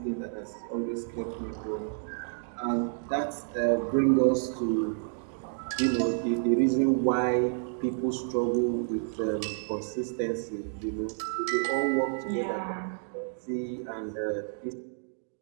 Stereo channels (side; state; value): left; silent; digital silence